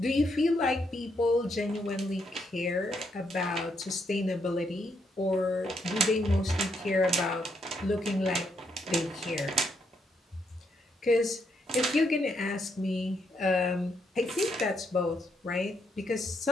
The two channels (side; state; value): both; normal; correlation 0.77